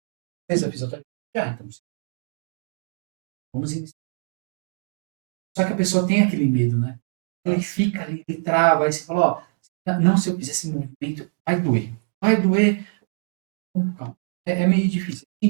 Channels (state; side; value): silent; left; digital silence